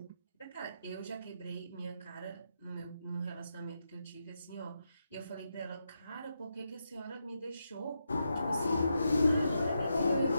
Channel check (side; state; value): both; inverted; correlation -0.84